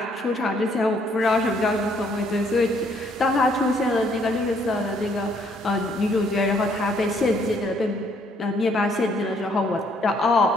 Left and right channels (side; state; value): both; normal; correlation 0.67